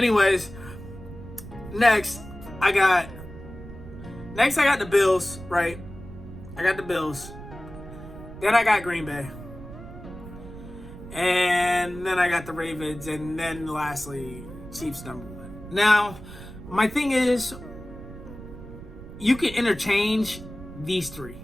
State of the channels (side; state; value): right; noise; rumble, 14 dB below the sound